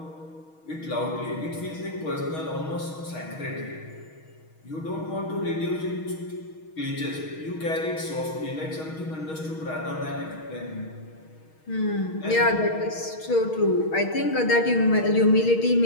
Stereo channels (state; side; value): late; right; 6.4 ms